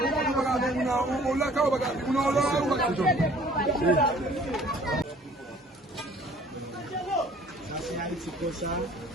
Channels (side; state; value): both; normal; correlation 0.54